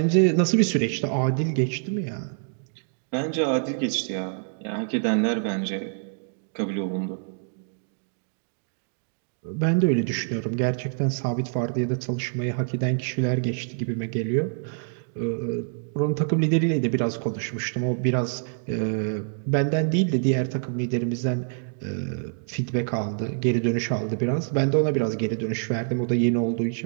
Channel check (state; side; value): silent; left; digital silence